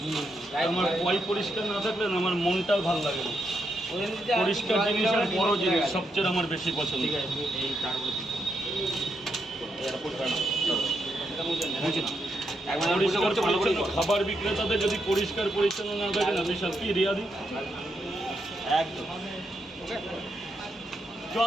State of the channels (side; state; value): both; normal; correlation 0.81